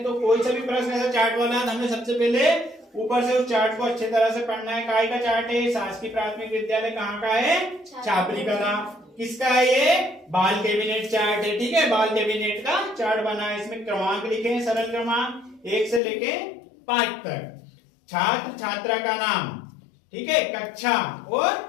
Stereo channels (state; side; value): drops out; right; at 16.0 s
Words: तो कोई सा भी प्रश्न ऐसा चार्ट वाला है तो हमें सबसे पहले ऊपर से उस चार्ट को अच्छे तरह से पढ़ना है। काय का चार्ट है? शासकीय प्राथमिक विद्यालय कहाँ का है? छापरी कला। किसका है ये? बाल कैबिनेट चार्ट है, ठीक है। बाल कैबिनेट का चार्ट बना है। इसमें क्रमांक लिखे हैं, सरल क्रमांक 1 से लेके 5 तक। छात्र छात्रा का नाम, ठीक है, कक्षा और